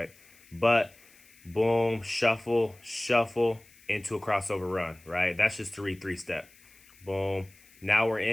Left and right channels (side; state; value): left; noise; hiss, 27 dB below the sound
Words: But boom, shuffle, shuffle into a crossover run, right? That's just to read 3-step. Boom. Now we're